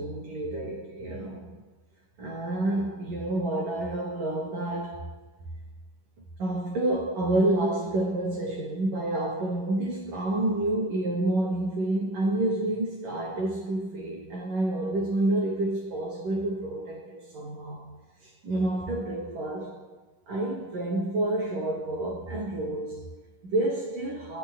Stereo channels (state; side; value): late; left; 11 ms